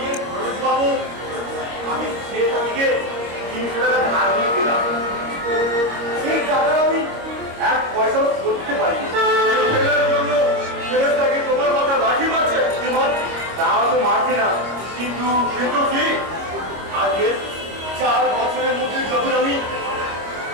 খরচ পাবো। আমি সে তারিখে 300 টাকা ধার নিয়ে দিলাম। সেই টাকা আমি 1 পয়সাও শোধ দিতে পারি। জন্য ছেলেটাকে তোমার মাথা লাঠি মারছে। তা তো মারছে না, কিন্তু কি আজকে 4 বছরের মধ্যে যখন আমি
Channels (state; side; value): late; left; 26 ms